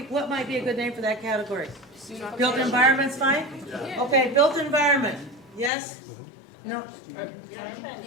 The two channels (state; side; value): drops out; right; at 5.7 s